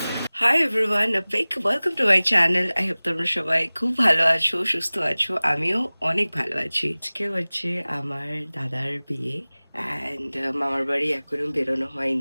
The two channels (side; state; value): both; inverted; correlation -0.99